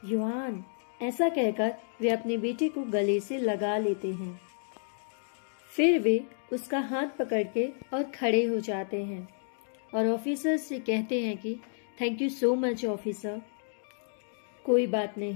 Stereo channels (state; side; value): silent; right; digital silence